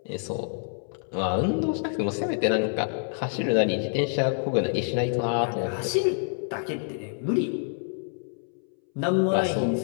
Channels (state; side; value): silent; right; 60 dB below the other